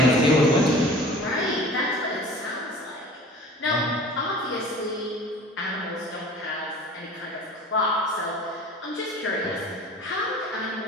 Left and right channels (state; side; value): normal; both; correlation 0.43